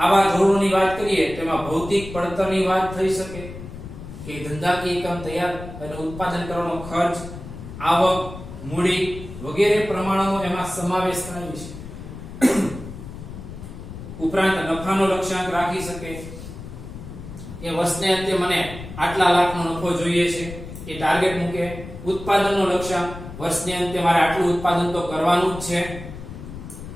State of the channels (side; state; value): left; noise; rumble, 12 dB below the sound